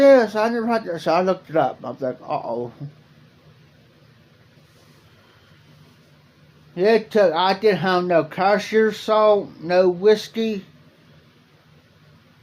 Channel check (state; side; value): identical; both; correlation 1.00